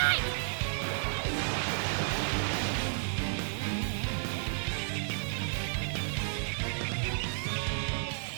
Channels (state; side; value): silent; left; digital silence